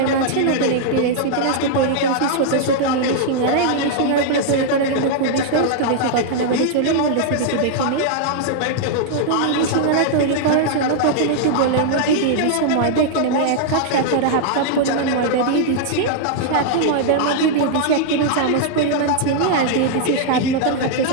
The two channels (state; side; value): different; both; correlation -0.01